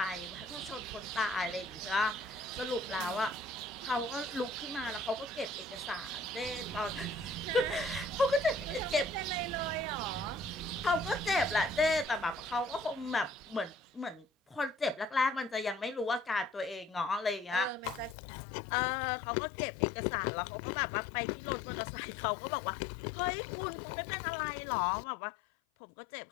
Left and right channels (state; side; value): drops out; right; at 18.2 s